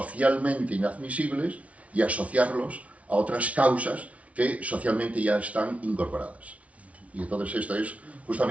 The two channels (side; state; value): left; late; 0.065 ms